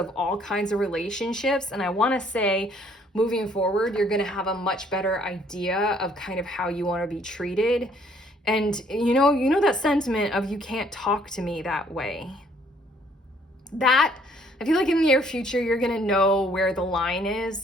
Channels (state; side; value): normal; both; correlation 0.63